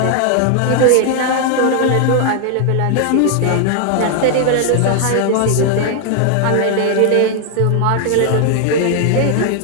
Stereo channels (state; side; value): different; both; correlation 0.00